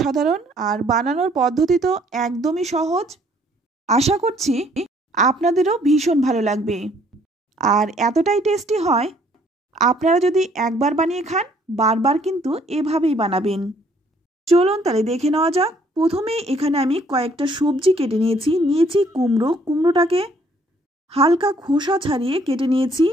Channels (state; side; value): normal; both; correlation 0.63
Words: আর বানানোর পদ্ধতি তো একদমই সহজ। আশা করছি আপনাদেরও ভীষণ ভালো লাগবে, আর এতটাই টেস্টি হয়, আপনারা যদি একবার বানিয়ে খান বারবার কিন্তু এভাবেই বানাবেন। চলুন তাহলে দেখে নেওয়া যাক। প্রথমে এখানে আমি কয়েকটা সবজি কেটে নিয়েছি কুমড়োটাকে হালকা খোসা ছাড়িয়ে কেটে নিয়েছি